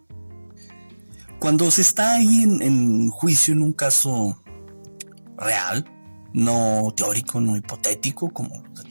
Cuando se está ahí en juicio en un caso real, no teórico, no hipotético como los de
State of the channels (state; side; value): inverted; both; correlation -1.00